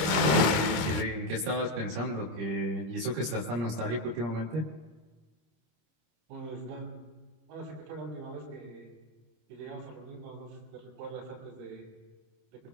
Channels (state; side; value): late; left; 25 ms